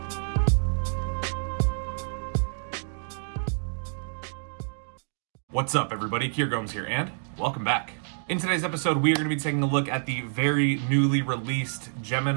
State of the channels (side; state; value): left; silent; digital silence